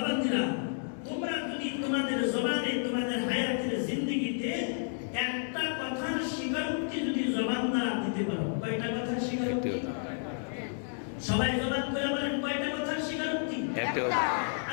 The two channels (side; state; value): right; silent; digital silence